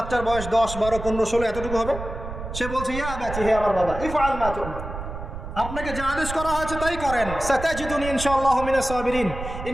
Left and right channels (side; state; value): right; noise; rumble, 8 dB below the sound